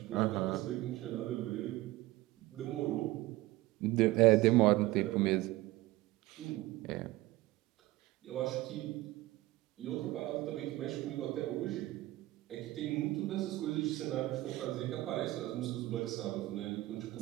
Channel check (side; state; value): left; quieter; 17.9 dB